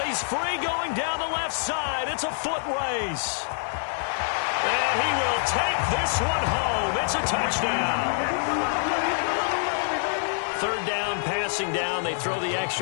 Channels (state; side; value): silent; right; 61 dB below the other